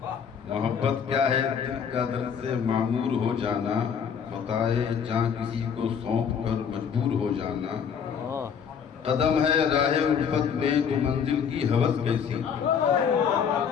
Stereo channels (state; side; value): quieter; right; 7.2 dB